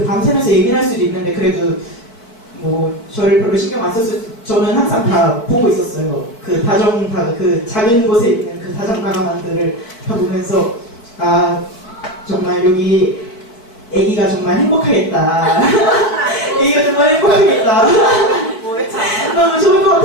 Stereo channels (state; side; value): late; right; 4.5 ms